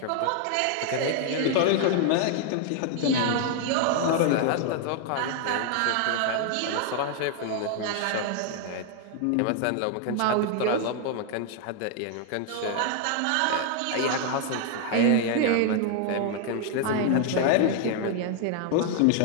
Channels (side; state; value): both; different; correlation 0.00